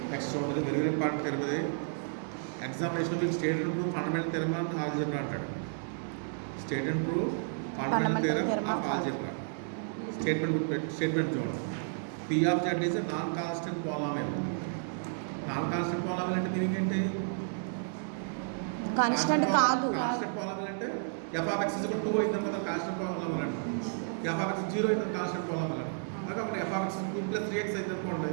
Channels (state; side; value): silent; left; digital silence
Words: Next ఉంటుంది very very important తెలియదు. ఎగ్జామినేషన్ మీకు state and prove fundamental theorem of algebra అంటాడు. State and prove fundamental theorem of algebra. Statement చూడండి. P of z is non constant polynomial. Non constant polynomial అంటే meaning ఏంటి? Constant కాదు. Constant polynomial అంటే f of x 2 అయింది కదా constant polynomial అంటే. F of x 0 అయింది కాన్స్టెంట్ పాలినామియల్ అంటే. అలాగే ఎఫ్ ఆఫ్ ఎక్స్ 2 + 3x అయింది అనుకోండి,